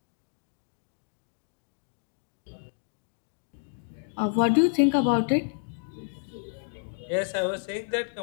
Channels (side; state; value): right; silent; digital silence